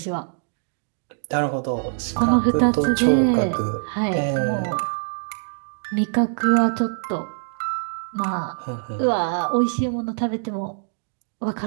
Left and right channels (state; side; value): silent; left; digital silence